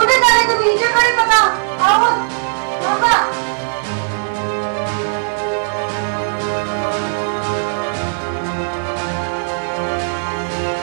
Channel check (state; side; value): silent; left; digital silence